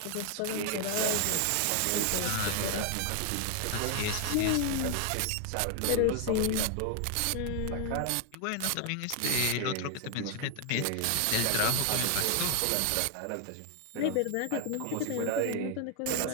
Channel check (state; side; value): different; both; correlation 0.00